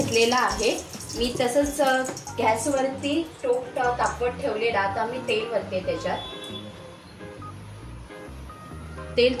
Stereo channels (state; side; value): identical; both; correlation 1.00